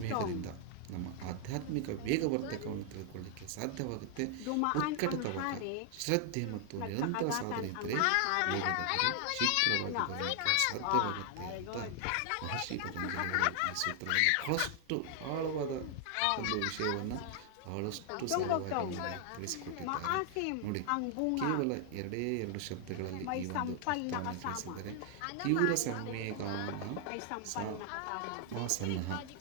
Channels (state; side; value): different; both; correlation 0.00